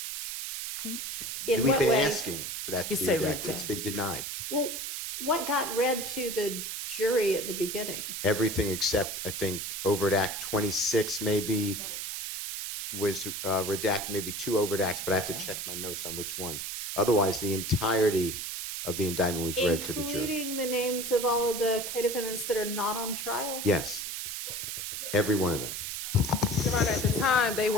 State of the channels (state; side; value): noise; right; hiss, 5 dB below the sound